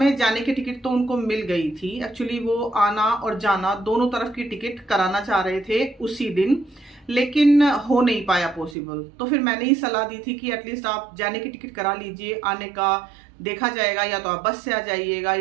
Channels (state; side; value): drops out; left; at 8.8 s